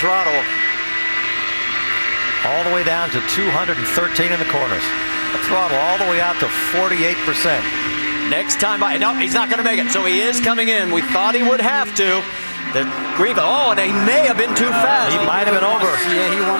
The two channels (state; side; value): inverted; both; correlation -1.00